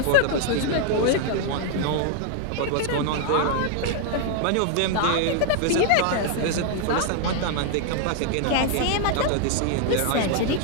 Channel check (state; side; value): different; both; correlation 0.00